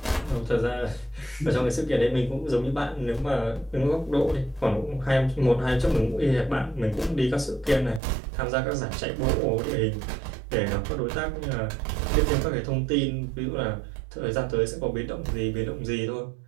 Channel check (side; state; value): left; drops out; at 8.0 s